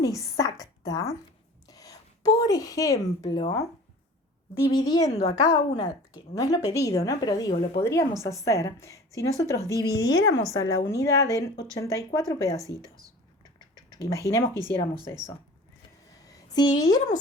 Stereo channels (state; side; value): normal; both; correlation 0.42